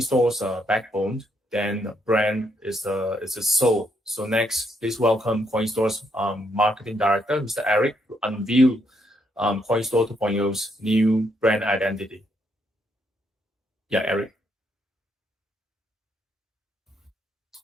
backbone, then brand is the soul. So next, please welcome Coinstore's marketing director, Mr. Eric, to unveil Coinstore 2.0's new brand identity. Yeah, Eric.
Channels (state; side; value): normal; both; correlation 0.74